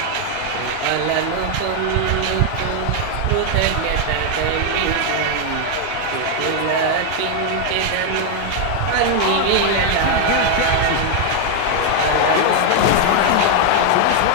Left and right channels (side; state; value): both; different; correlation 0.00